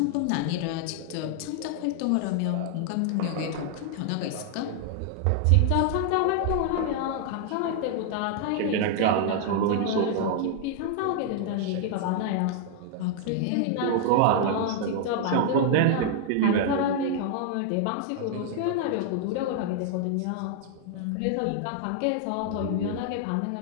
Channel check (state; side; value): different; both; correlation 0.00